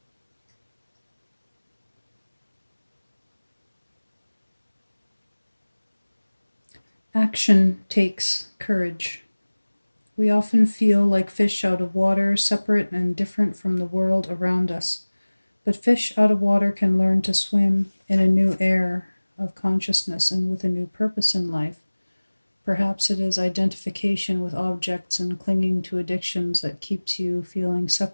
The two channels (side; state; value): both; inverted; correlation -1.00